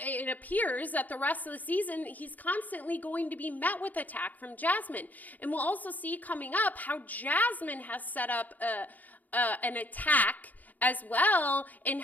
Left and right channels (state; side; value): late; right; 0.081 ms